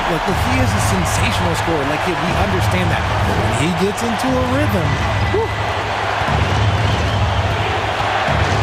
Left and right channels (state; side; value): identical; both; correlation 1.00